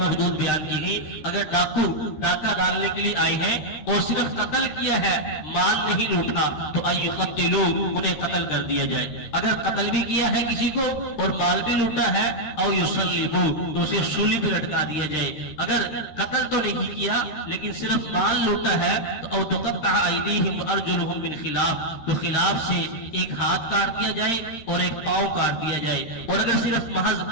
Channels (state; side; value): late; right; 13 ms